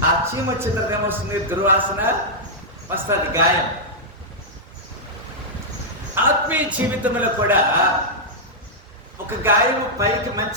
ఆ చీమ వచ్చిన తర్వాత ఏమొస్తుంది? దుర్వాసన వస్తుంది, గాయం. ఆత్మీయ జీవితంలో కూడా ఒక గాయం పైకి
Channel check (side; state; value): both; normal; correlation -0.07